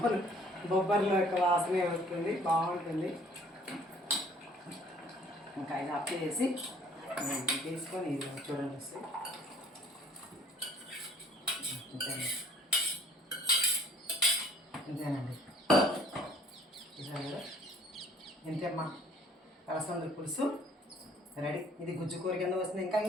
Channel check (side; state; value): both; normal; correlation 0.57